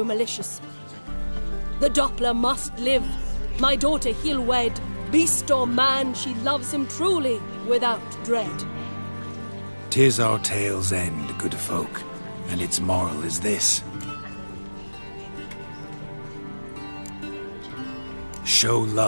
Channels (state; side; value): inverted; both; correlation -1.00